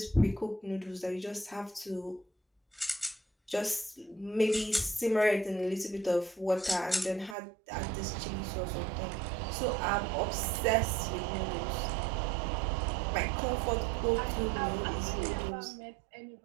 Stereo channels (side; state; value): left; drops out; at 7.4 s